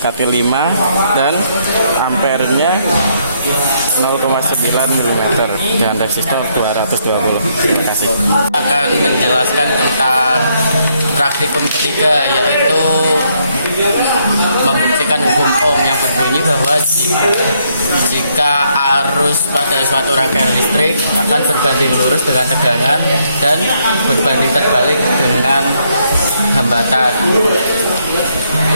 5, dan ampernya 0,9 mm dan resistor 220. Terima kasih. Akan menjelaskan tentang praktikum ketiga, yaitu membuktikan hukum Ohm yang berbunyi bahwa jika arus pada suatu rangkaian listrik akan berbanding lurus dengan tegangan dan berbanding terbalik dengan hambatan.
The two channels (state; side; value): inverted; both; correlation -0.73